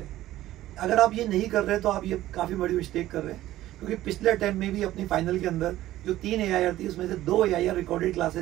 अगर आप ये नहीं कर रहे तो आप ये काफ़ी बड़ी मिस्टेक कर रहे हैं, क्योंकि पिछले अटेम्प्ट में भी अपनी फाइनल के अंदर जो 3 AIR थी उसमें से 2 AIR रिकॉर्डेड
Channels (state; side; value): quieter; left; 14.8 dB